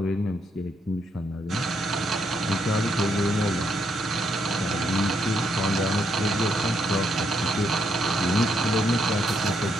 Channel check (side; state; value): both; normal; correlation 0.76